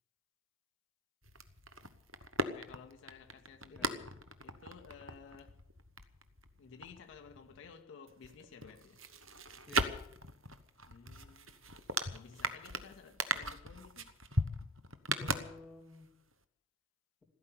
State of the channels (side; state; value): both; normal; correlation 0.26